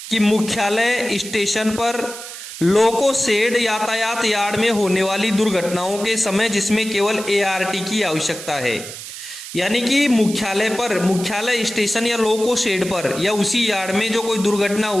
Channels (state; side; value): noise; right; hiss, 11 dB below the sound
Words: कि मुख्यालय स्टेशन पर लोको शेड यातायात यार्ड में होने वाली दुर्घटनाओं के समय जिसमें केवल एआरटी की आवश्यकता है। यानी कि मुख्यालय स्टेशन या लोको शेड पर या उसी यार्ड में जो कोई दुर्घटना